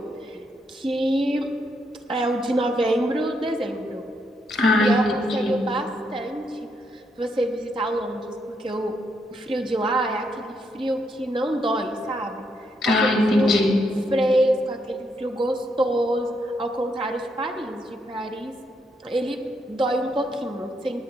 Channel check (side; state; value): both; normal; correlation 0.77